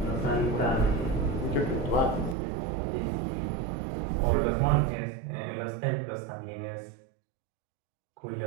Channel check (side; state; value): left; drops out; at 2.4 s